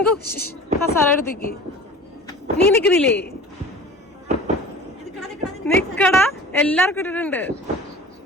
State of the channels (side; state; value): both; normal; correlation 0.41